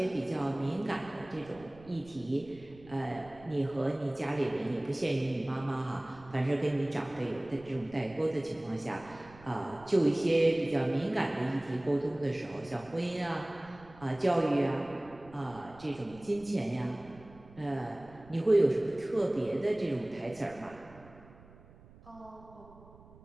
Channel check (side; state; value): right; noise; rumble, 22 dB below the sound